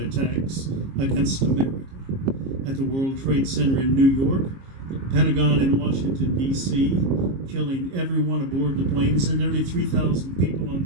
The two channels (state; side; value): late; left; 22 ms